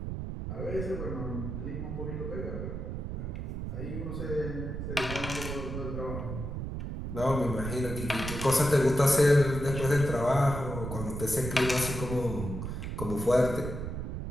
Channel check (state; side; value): noise; right; rumble, 5 dB below the sound